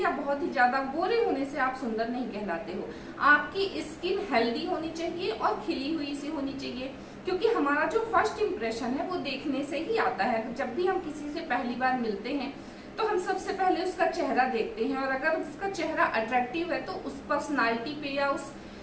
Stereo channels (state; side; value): identical; both; correlation 1.00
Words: बहुत ही ज्यादा गोरे होने से आप सुंदर नहीं कहलाते हो। आपकी स्किन हेल्दी होनी चाहिए और खिली हुई सी होनी चाहिए, क्योंकि हमारा जो फर्स्ट इम्प्रेशन है वो देखने से ही आता है। जब भी हम किसी से पहली बार मिलते हैं तो हम सबसे पहले उसका चेहरा देखते हैं, और अगर उसका चेहरा अट्रैक्टिव है तो उस पर्सनालिटी पे या उस